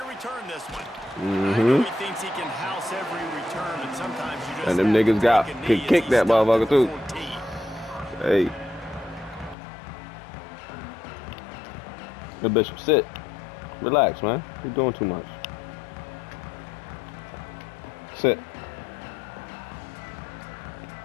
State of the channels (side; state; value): right; drops out; at 9.6 s